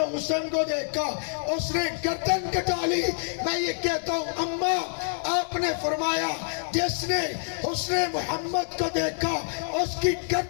حسن کو دیکھا اس نے گردن کٹا لی۔ میں یہ کہتا ہوں اماں آپ نے فرمایا، جس نے حسن محمد کو دیکھا اس کی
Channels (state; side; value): silent; right; 60 dB below the other